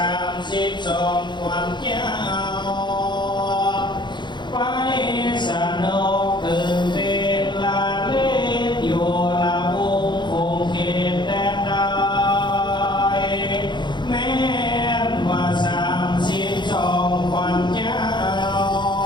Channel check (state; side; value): late; right; 0.22 ms